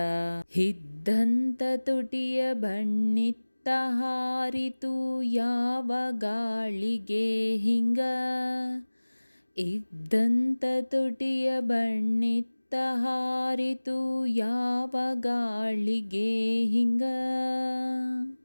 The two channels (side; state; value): both; inverted; correlation -1.00